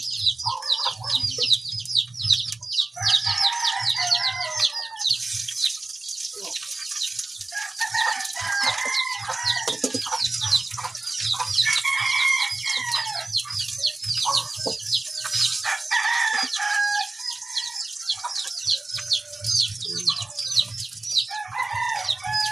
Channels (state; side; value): quieter; left; 3.1 dB